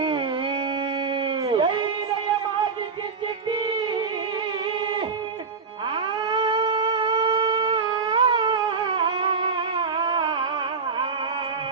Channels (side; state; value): left; quieter; 5.1 dB